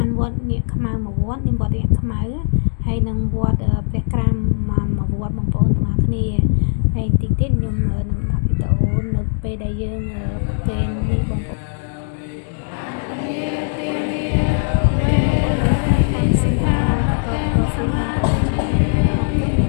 ានវត្តនាគខ្មៅមួយវត្តនេះវត្តនាគខ្មៅហើយនឹងវត្តព្រះក្រាមមួយវត្តបងប្អូនទាំងអស់គ្នាហើយតិចទៀតខ្ញុំនឹងដាក់វីដេអូនៅពេលដែលយើងប្រកេននេះបងប្អូនសិក្ខាបទសមាទិនី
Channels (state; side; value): silent; right; digital silence